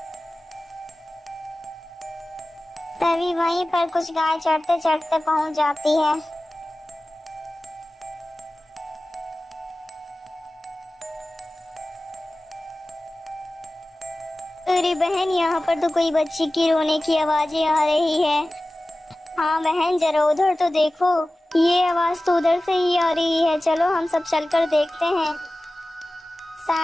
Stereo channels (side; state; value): both; normal; correlation 0.96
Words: तभी वहीं पर कुछ गाय चढ़ते चढ़ते पहुंच जाती है। अरे बहन, यहाँ पर तो कोई बच्ची की रोने की आवाजें आ रही है। हाँ बहन, जरा उधर तो देखो, ये आवाज तो उधर से ही आ रही है। चलो हम सब चलकर देखते हैं।